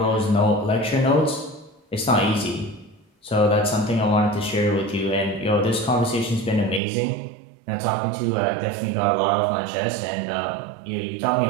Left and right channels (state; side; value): drops out; left; at 6.8 s